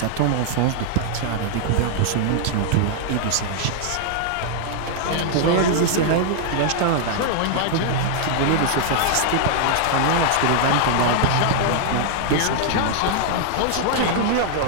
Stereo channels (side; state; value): both; different; correlation 0.00